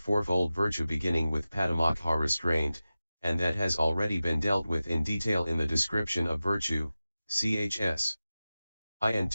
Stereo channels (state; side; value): inverted; both; correlation -0.95